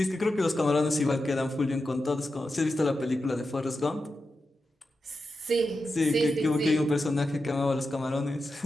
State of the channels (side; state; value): both; normal; correlation 0.90